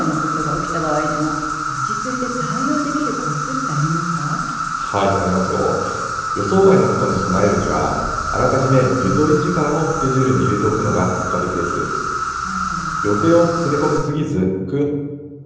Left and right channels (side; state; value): both; identical; correlation 1.00